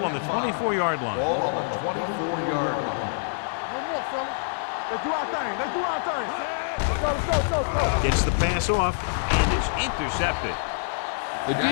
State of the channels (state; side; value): silent; right; 61 dB below the other